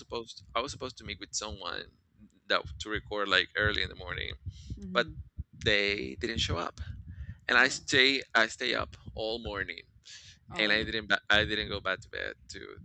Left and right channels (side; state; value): both; identical; correlation 1.00